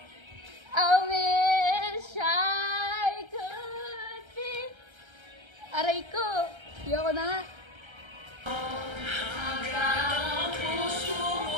I wish I could be. Aray ko. Ayoko na nga.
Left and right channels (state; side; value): late; left; 1.3 ms